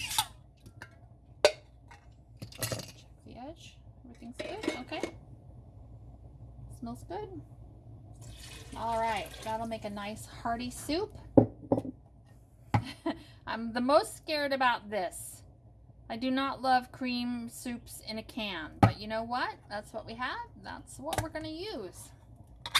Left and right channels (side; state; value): both; identical; correlation 1.00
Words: smells good. All right, that'll make a nice hearty soup. I'm the most scared about this. I do not love cream soups in a can, but you know what? That's what we have. That's what we're going to use.